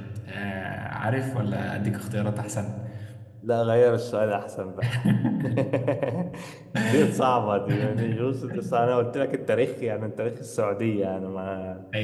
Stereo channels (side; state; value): both; identical; correlation 1.00